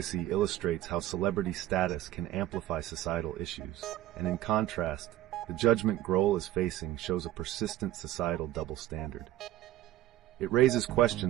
illustrates how celebrity status can amplify societal issues, and in contrast, the judgment Grohl is facing shows a persistent societal double standard. It raises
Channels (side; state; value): left; quieter; 14.1 dB